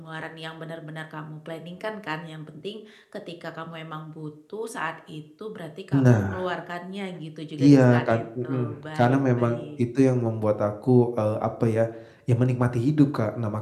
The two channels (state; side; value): identical; both; correlation 1.00